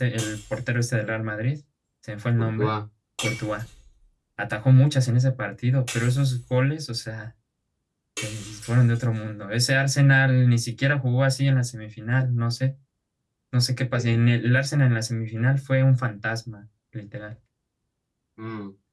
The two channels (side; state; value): both; identical; correlation 1.00